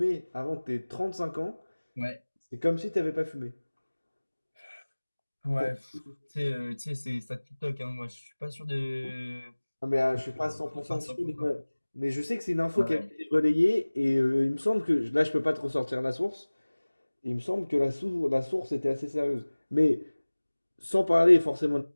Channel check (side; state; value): both; inverted; correlation -1.00